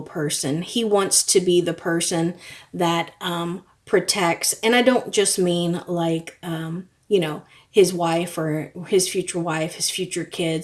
person. He wants to be the person that protects. And I don't just mean like his wife or his future wife, his future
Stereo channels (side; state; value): both; identical; correlation 1.00